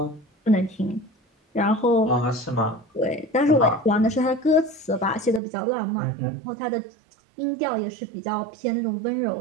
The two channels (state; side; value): drops out; left; at 5.4 s